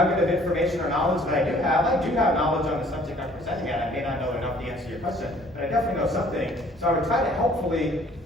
of information or knowledge that I do have. I do have knowledge on the subject I'm presenting at. I may not know enough to answer your question, but I definitely know something. So I would try to helpfully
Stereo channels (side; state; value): both; normal; correlation 0.56